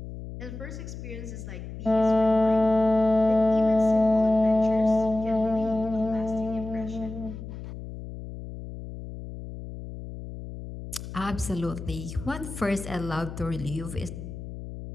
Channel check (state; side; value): noise; left; hum, 11 dB below the sound